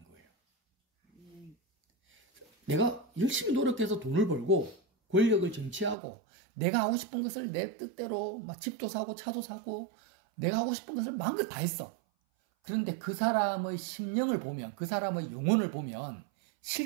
거예요. 내가 열심히 노력해서 돈을 벌고 권력을 쟁취하고 내가 하고 싶은 것을 내 뜻대로 막 집도 사고 차도 사고 내가 하고 싶은 것을 마음껏 다 했어. 그런데 그 사람의 심령을 보면, 그 사람의 영혼을 보면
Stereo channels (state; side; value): drops out; left; at 6.0 s